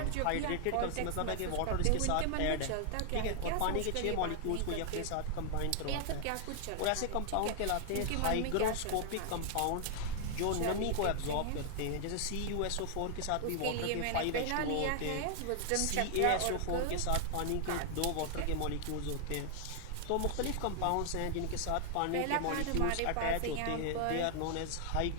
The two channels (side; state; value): both; different; correlation 0.00